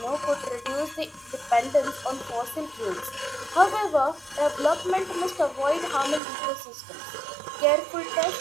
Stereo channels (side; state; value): left; drops out; at 6.2 s